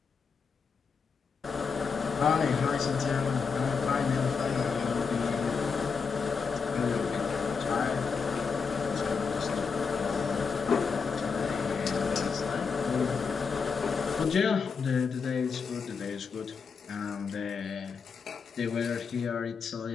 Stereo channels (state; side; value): quieter; right; 5.5 dB